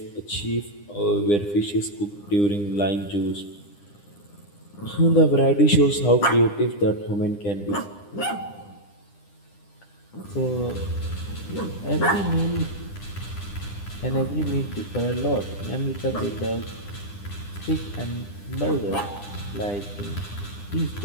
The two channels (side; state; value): right; late; 9.9 ms